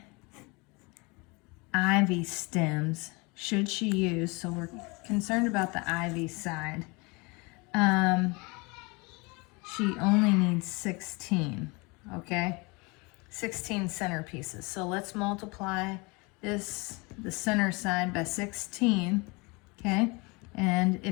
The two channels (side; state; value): right; quieter; 27.6 dB